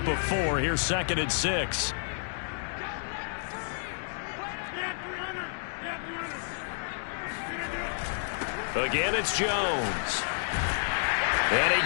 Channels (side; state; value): right; silent; digital silence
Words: of 4, here's 2nd and 6. Again, it's Jones. And